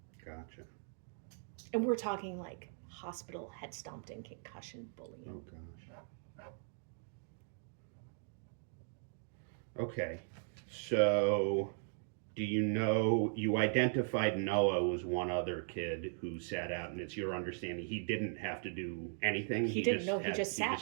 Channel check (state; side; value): silent; left; 52 dB below the other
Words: Gotcha. And we're talking like hospital, head stomped, and concussion bullying. Oh gosh. Okay, so do you know, you identified Noah was one other kid who sat out, and it's your understanding he didn't have to do anything? He didn't, no, he just sat. He